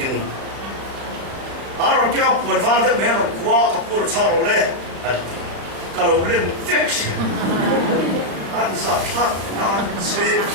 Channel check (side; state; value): left; late; 36 ms